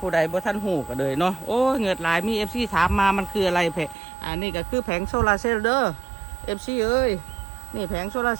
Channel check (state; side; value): drops out; left; at 4.0 s